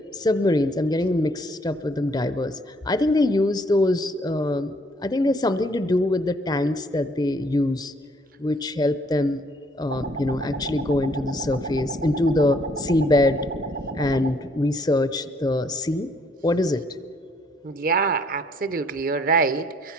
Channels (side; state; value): both; normal; correlation 0.64